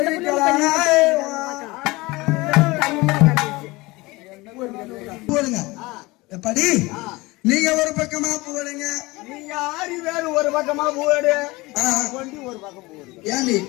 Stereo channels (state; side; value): quieter; right; 22.2 dB